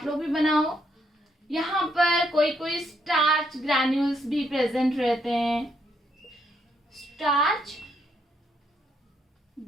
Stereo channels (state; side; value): normal; both; correlation 0.75